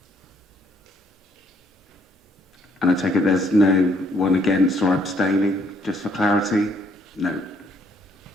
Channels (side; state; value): both; normal; correlation 0.68